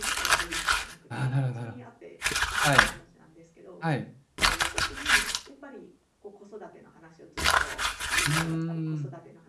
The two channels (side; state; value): both; identical; correlation 1.00